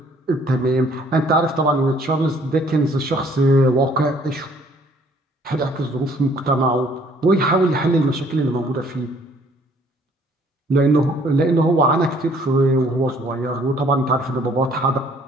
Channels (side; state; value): both; normal; correlation 0.60